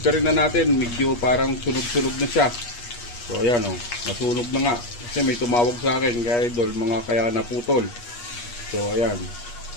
rin na natin, medyo parang sunog-sunog na siya. So ayan o, nasunog na nga. Kasi may tumawag sa akin kaya idol, mga kaya naputol. So ayan.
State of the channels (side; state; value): right; late; 8.4 ms